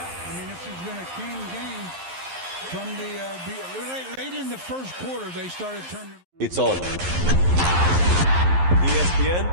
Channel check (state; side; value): late; left; 11 ms